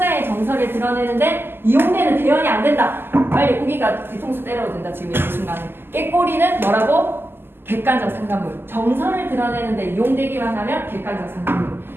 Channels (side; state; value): left; late; 0.10 ms